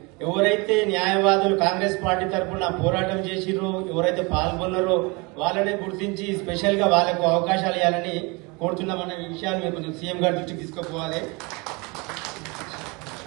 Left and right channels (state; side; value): quieter; left; 27.9 dB